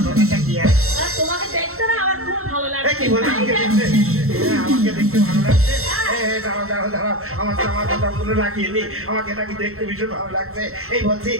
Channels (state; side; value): late; left; 0.63 ms